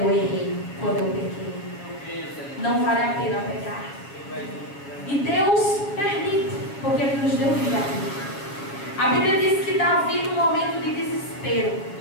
errei, quando eu pequei. Não vale a pena pecar. E Deus permite, porque Ele nos deu vida. A Bíblia diz que Davi, no momento de desespero,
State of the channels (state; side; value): late; right; 7.6 ms